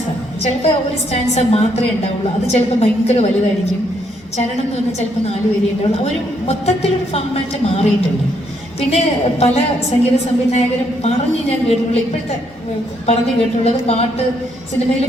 ചിലപ്പോൾ ഒരു സ്റ്റാൻസ മാത്രമേ ഉണ്ടാവുള്ളൂ. അത് ചിലപ്പോൾ ഭയങ്കര വലുതായിരിക്കും. ചരണം എന്ന് പറഞ്ഞാൽ ചിലപ്പോൾ 4 വരി ഉണ്ടാവുള്ളൂ. ഒരു മൊത്തത്തിലൊരു ഫോമാറ്റ് മാറിയിട്ടുണ്ട്. പിന്നെ പല സംഗീത സംവിധായകരും ഞാൻ കേട്ടിട്ടുള്ള, ഇപ്പോഴത്തെ കേട്ടിട്ടുള്ളത്, സിനിമയിൽ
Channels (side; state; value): both; normal; correlation 0.73